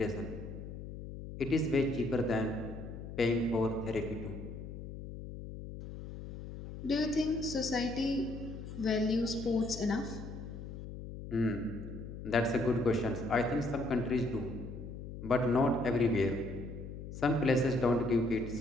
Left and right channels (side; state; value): left; noise; hum, 10 dB below the sound